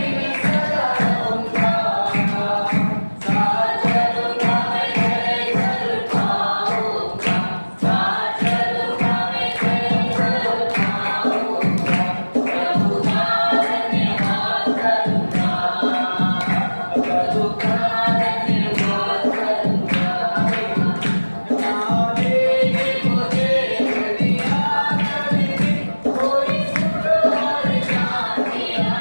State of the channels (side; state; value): both; inverted; correlation -1.00